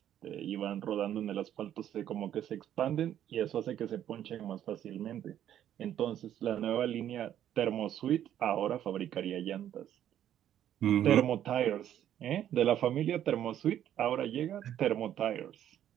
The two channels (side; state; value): left; quieter; 10.9 dB